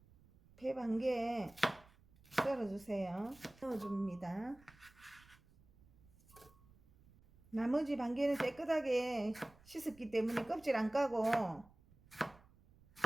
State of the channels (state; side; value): noise; right; rumble, 27 dB below the sound